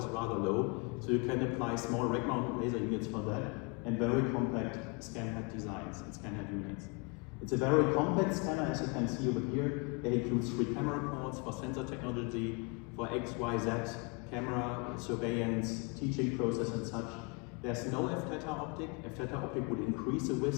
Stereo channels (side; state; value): right; quieter; 31.6 dB